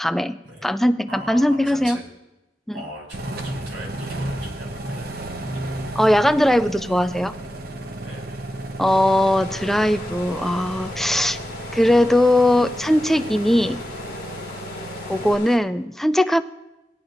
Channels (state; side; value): normal; both; correlation 0.92